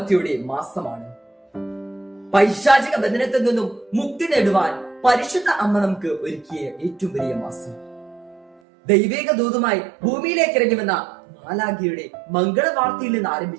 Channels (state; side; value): drops out; left; at 8.6 s